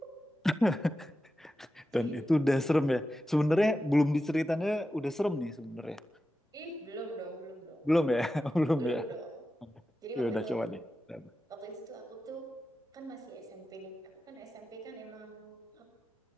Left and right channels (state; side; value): normal; both; correlation 0.92